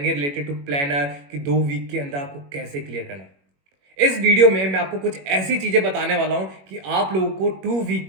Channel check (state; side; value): late; left; 21 ms